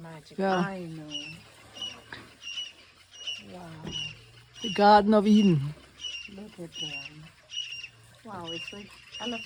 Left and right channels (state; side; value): identical; both; correlation 1.00